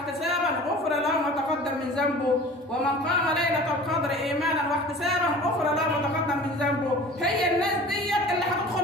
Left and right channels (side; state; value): both; normal; correlation 0.42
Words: غفر له ما تقدم من ذنبه، ومن قام ليله القدر ايمانا واحتسابا غفر له ما تقدم من ذنبه. هي الناس ديت اللي